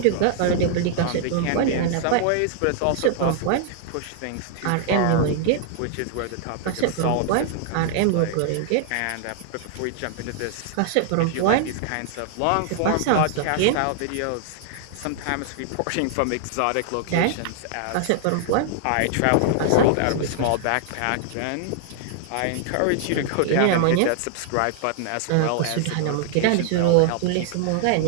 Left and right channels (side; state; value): both; different; correlation -0.01